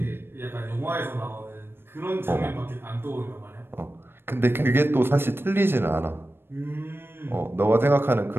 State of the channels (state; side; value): late; left; 0.11 ms